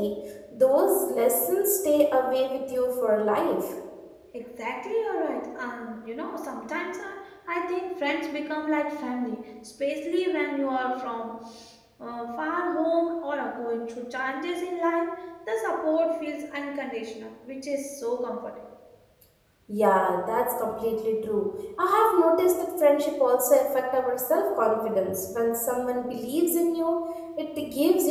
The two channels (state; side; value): identical; both; correlation 1.00